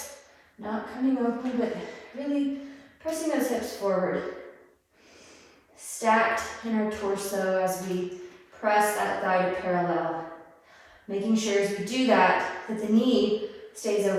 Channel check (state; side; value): identical; both; correlation 1.00